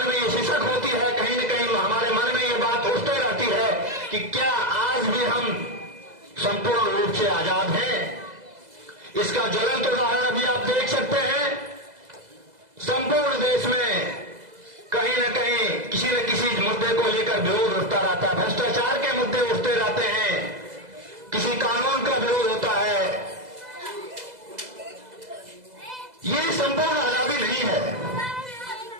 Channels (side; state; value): left; late; 2.0 ms